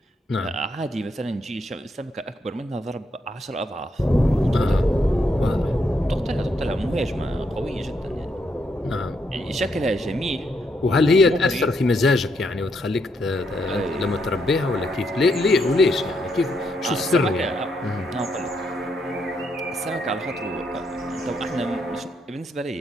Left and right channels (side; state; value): both; normal; correlation 0.77